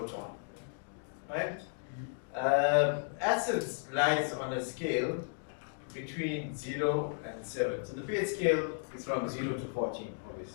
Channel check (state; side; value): silent; right; digital silence